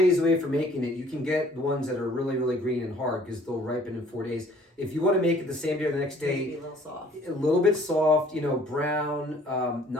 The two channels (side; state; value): both; normal; correlation 0.56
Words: away from making it, you can get the ones that are really, really green and hard because they'll ripen in 4 days. If you want to make it the same day or the next day, Be a little soft. a little bit soft, brown,